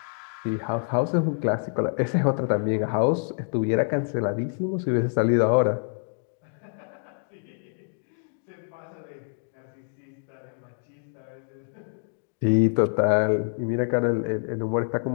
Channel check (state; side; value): silent; right; 60 dB below the other